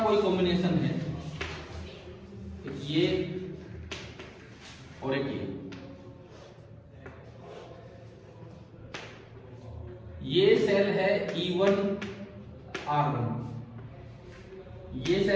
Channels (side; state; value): both; identical; correlation 1.00